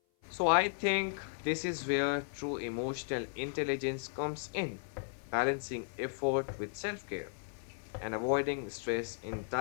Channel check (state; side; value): silent; right; 54 dB below the other